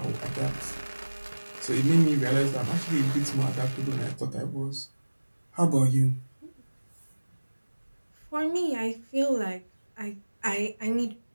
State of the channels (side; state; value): both; inverted; correlation -1.00